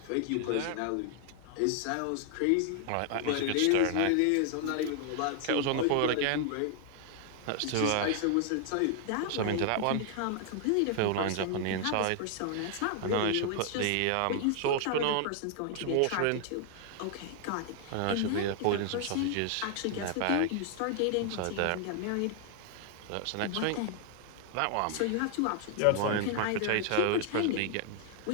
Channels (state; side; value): different; both; correlation 0.00